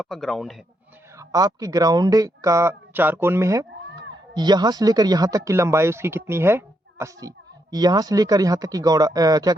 ग्राउंड है, आपकी ग्राउंड का चार कोण में है। यहाँ से लेकर यहाँ तक की लंबाई उसकी कितनी है, 80। यहाँ से लेकर यहाँ तक की क्या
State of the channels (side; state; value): both; normal; correlation 0.79